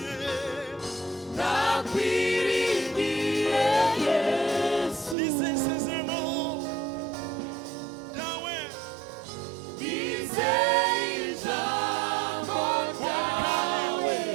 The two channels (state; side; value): drops out; left; at 5.2 s